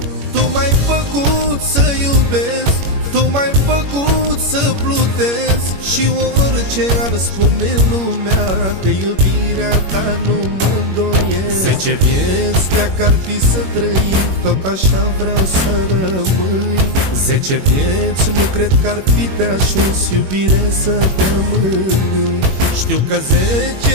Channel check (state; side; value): late; left; 21 ms